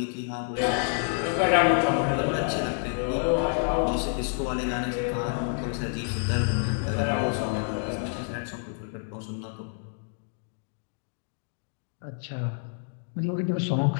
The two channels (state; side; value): silent; right; 59 dB below the other